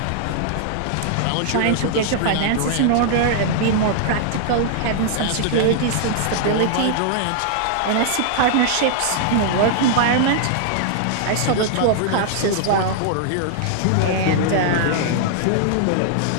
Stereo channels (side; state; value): both; different; correlation -0.01